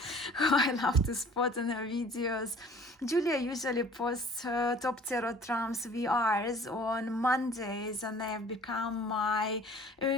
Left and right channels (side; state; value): both; normal; correlation 0.50